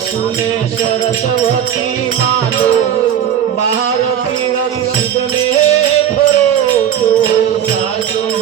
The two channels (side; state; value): left; quieter; 9.6 dB